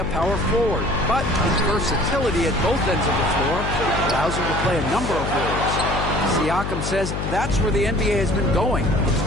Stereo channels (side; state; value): left; noise; hum, 3 dB below the sound